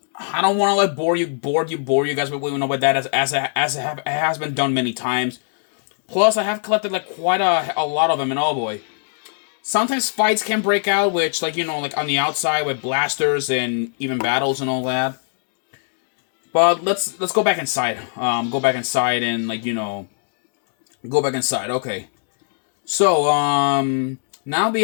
don't want to bore you guys with that as it has been done many times. Plus, I have collected quite a lot of them, and oh boy, sometimes fights can break out, which on the outside with blasters and even battles and all that. But let's go back inside. Go back inside and go back inside. Okay. So now we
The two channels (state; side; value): silent; right; digital silence